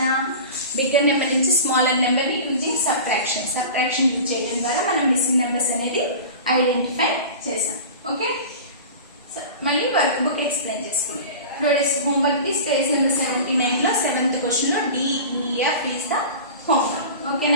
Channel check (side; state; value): both; inverted; correlation -0.34